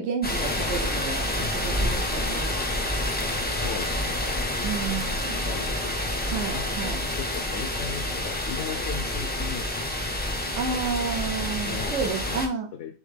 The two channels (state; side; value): normal; both; correlation 0.20